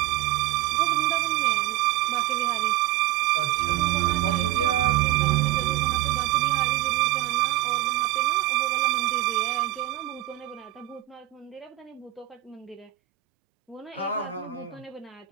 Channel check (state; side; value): quieter; left; 15.5 dB